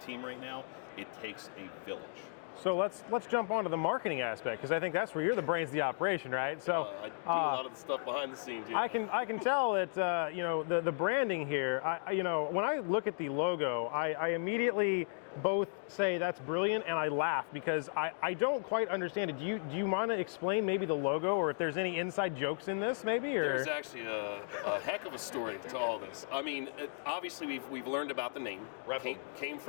right now, it takes a village. So let's jump onto the marketing aspect, because I think that's where you're the brains of the operation, right? So I do a lot of the stuff behind the scenes. I can tell that the branding here. When I look at the logo, I immediately both say that's brilliant and I laugh because I don't quite understand it. Do you want to explain maybe the logo, or if there's any inside jokes in this, maybe? Or? There's actually a heck of a story to all this. I mean, obviously we've learned about the name. Came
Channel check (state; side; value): silent; right; digital silence